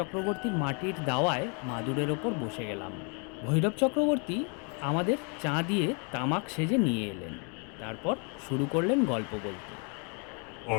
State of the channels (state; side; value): quieter; right; 36.6 dB